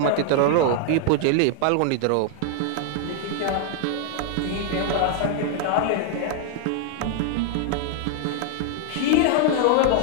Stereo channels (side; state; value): both; different; correlation 0.00